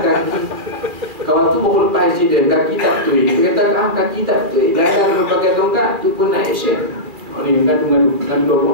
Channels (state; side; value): late; left; 2.4 ms